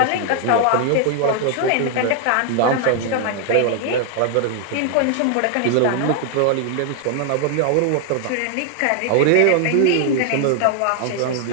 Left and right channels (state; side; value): different; both; correlation 0.00